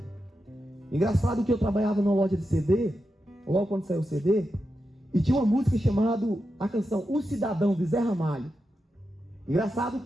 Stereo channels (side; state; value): both; normal; correlation 0.88